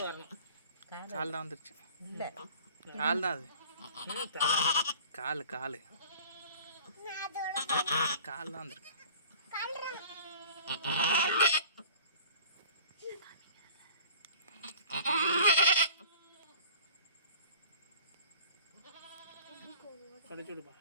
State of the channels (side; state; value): both; inverted; correlation -0.45